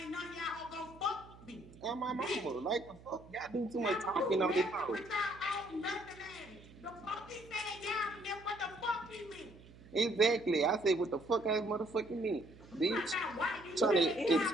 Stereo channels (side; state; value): right; noise; hum, 21 dB below the sound